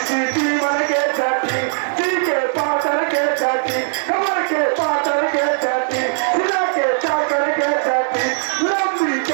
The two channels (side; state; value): left; silent; digital silence